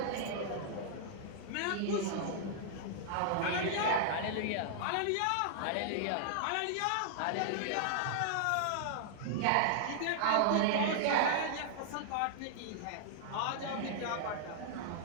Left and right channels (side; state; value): both; different; correlation -0.01